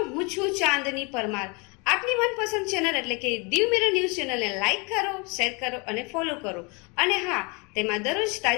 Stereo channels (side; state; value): right; quieter; 30.7 dB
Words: હું છું ચાંદની પરમાર। આપની મનપસંદ ચેનલ એટલે કે દીવ મિરર ન્યૂઝ ચેનલને લાઈક કરો, શેર કરો અને ફોલો કરો અને હા, તેમાં દરરોજ